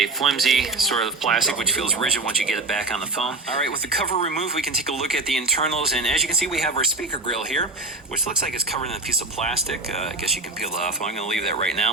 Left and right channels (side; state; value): left; quieter; 3.1 dB